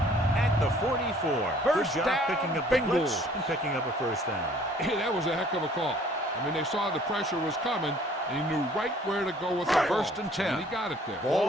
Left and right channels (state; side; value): normal; both; correlation 0.56